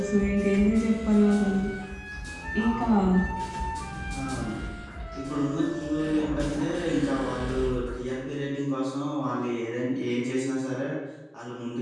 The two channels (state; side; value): identical; both; correlation 1.00